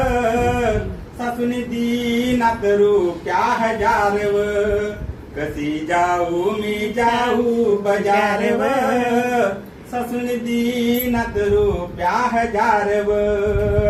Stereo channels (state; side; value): identical; both; correlation 1.00